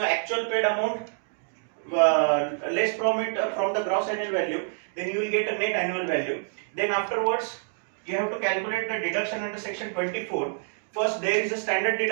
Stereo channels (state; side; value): silent; left; digital silence